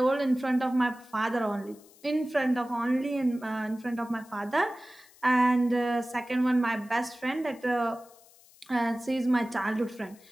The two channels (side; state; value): left; noise; hiss, 26 dB below the sound